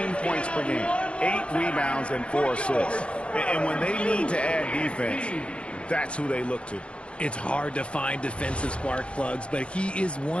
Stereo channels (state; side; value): late; right; 0.059 ms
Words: points per game, 8 rebounds, and 4 assists. And when they need to add defense, that's who they look to. It's hard to find defensive spark plugs, but he is